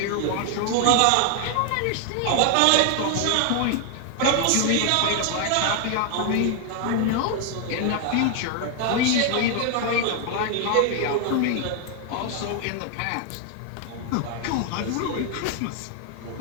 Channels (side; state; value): both; different; correlation 0.00